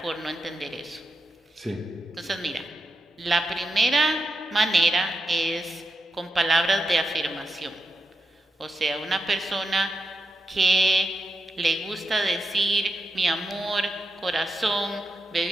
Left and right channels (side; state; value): both; normal; correlation 0.86